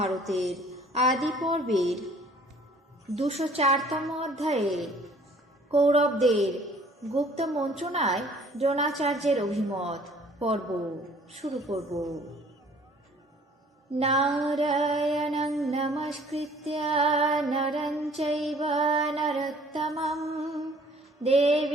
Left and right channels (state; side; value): normal; both; correlation 0.55